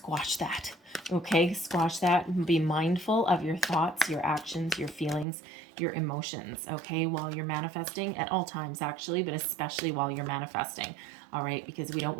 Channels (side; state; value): left; drops out; at 5.2 s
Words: that. Okay, squash that. Be mindful of your thoughts, your actions, your feelings, your emotions, okay, while you're manifesting, at all times actually, but especially while you're manifesting. All right, because we don't